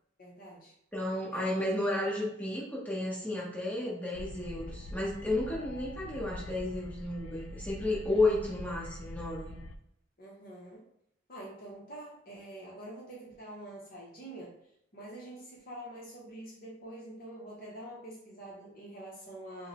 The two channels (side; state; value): both; normal; correlation 0.76